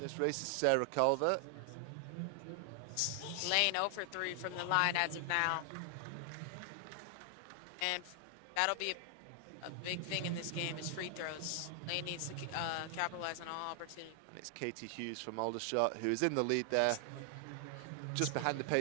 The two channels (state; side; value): different; both; correlation 0.00